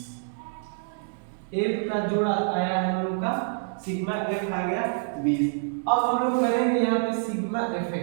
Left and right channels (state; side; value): silent; left; digital silence